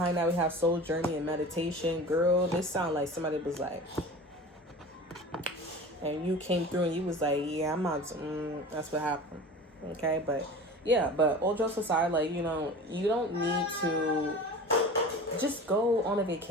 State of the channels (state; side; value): normal; both; correlation 0.36